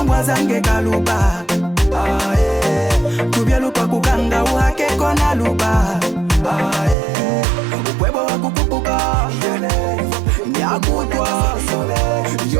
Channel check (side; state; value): left; drops out; at 7.0 s